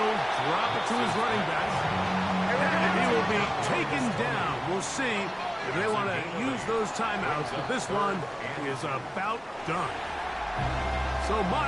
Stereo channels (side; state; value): both; identical; correlation 1.00